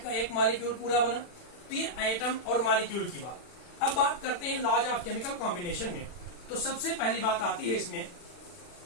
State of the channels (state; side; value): late; right; 40 ms